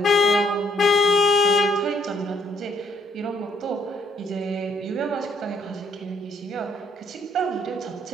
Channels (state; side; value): normal; both; correlation 0.67